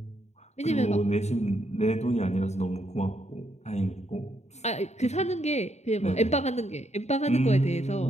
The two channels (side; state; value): right; late; 0.32 ms